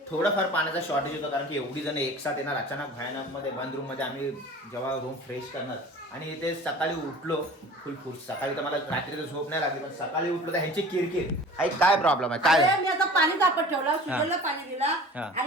थोडंफार पाण्याचा शॉर्टेज होतं, कारण की एवढी जण एक साथ येणार अचानक भयानक मध्ये बंद रूम मध्ये. आम्ही जेव्हा रूम फ्रेश करणार आणि इथे सकाळी उठलो फुल फुस. सकाळी तर मला रात्री तर झोप नाही लागली, पण सकाळी उठलो तर ह्यांची किरकिर. काय प्रॉब्लेम आहे काय? मी आता पाणी तापत ठेवला, सुजलला पाणी दिला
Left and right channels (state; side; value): normal; both; correlation 0.43